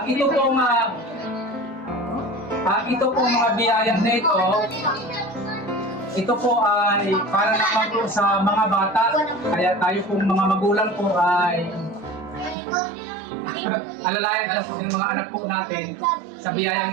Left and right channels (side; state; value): left; drops out; at 12.6 s